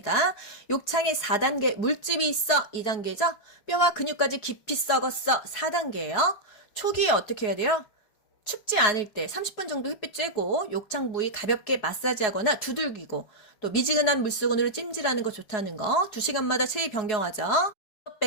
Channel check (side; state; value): right; late; 4.7 ms